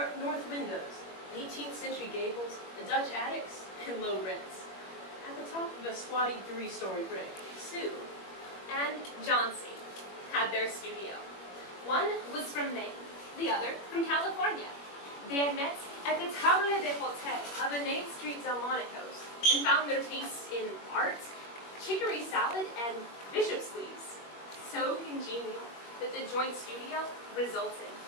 north windows, 18th century gables, Dutch attics, and low rents. At the top of a squatty 3-story brick, Sue and Johnsy had their studio. One was from Maine, the other from California. They had met at the Table de Hotel of the 8th Street Delmonico's and found their tastes in art, chicory salad, and bishop's leaves so congenial that the joint studio resulted.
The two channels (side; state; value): right; late; 21 ms